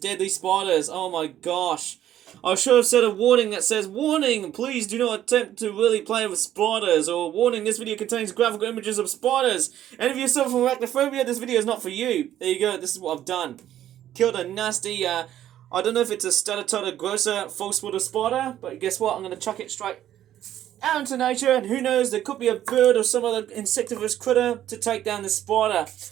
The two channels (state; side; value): quieter; left; 11.8 dB